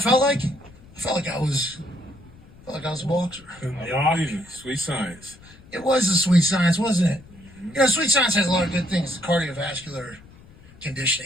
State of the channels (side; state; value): left; noise; rumble, 23 dB below the sound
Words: felt like I was a boxer. Sweet science. It was a sweet science, wasn't it? Sweet science has a lot of good things. The cardiovascular